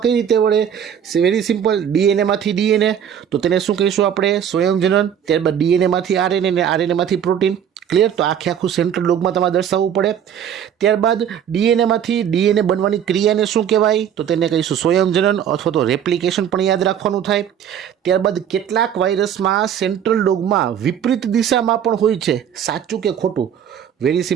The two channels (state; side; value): quieter; left; 9.0 dB